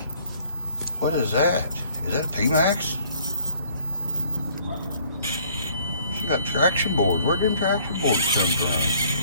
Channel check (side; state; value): both; inverted; correlation -0.59